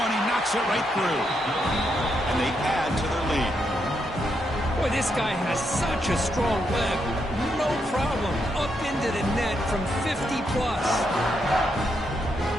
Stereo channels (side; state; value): both; normal; correlation 0.80